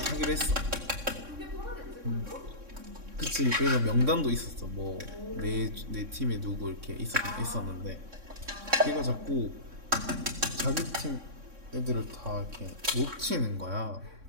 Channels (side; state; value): left; late; 3.6 ms